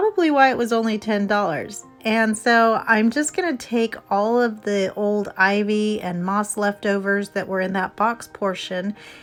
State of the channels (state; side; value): identical; both; correlation 1.00